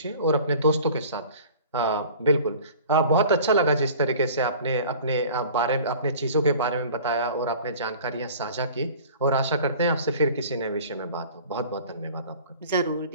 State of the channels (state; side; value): inverted; both; correlation -0.44